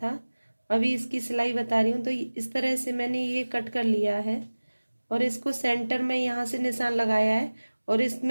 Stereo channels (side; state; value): both; inverted; correlation -1.00